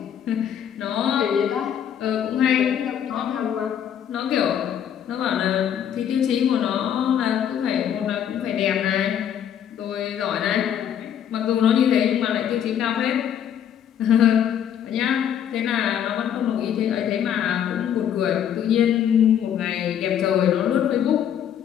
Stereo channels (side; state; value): right; quieter; 9.3 dB